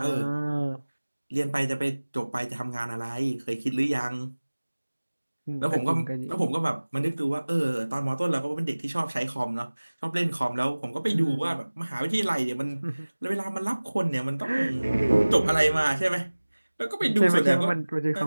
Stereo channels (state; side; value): inverted; both; correlation -1.00